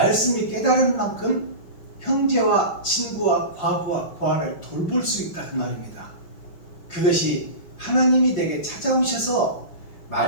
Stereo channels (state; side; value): late; right; 5.7 ms